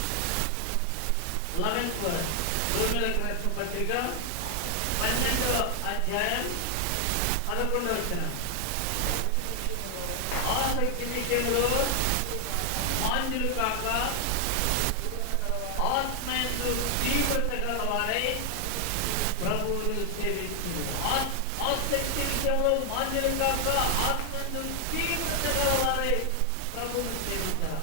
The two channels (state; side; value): different; both; correlation 0.00